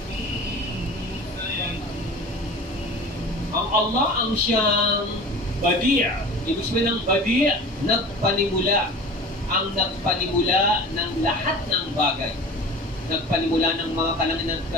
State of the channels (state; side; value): normal; both; correlation 0.38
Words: Ang Allah ang siyang Badi'. Ibig sabihin ng Badi', nagpanimula. Ang nagpanimula ng lahat ng bagay. Nagpanimula ng mga kalangitan at